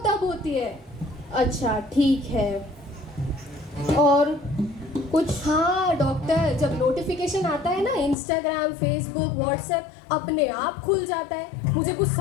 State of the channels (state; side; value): drops out; right; at 8.2 s